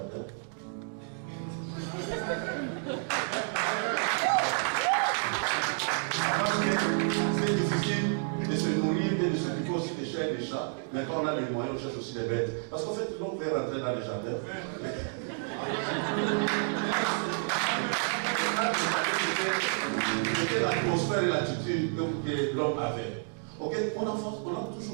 C'est difficile de se nourrir, de s'occuper aussi des chiens et des chats. Mais quand on a les moyens, on cherche aussi les bêtes. Parce qu'en fait, l'homme veut rentrer dans les jardins. C'était l'atmosphère et l'attitude que l'homme avait. Okay? On a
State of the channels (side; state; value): left; silent; 55 dB below the other